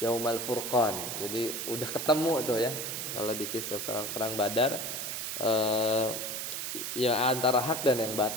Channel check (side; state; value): right; noise; hiss, 4 dB below the sound